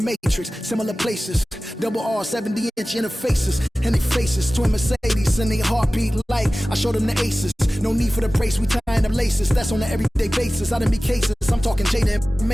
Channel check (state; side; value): normal; both; correlation 0.97